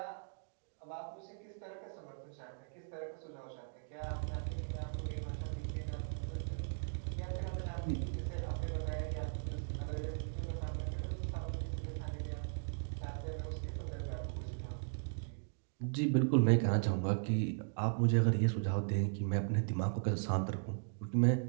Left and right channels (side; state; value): left; silent; digital silence